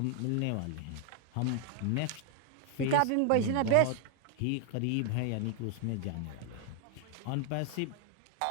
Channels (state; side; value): different; both; correlation 0.00